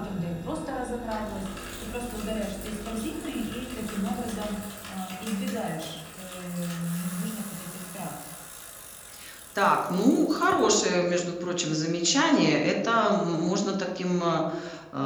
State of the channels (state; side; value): identical; both; correlation 1.00